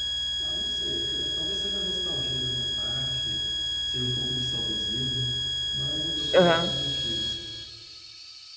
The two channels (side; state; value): both; identical; correlation 1.00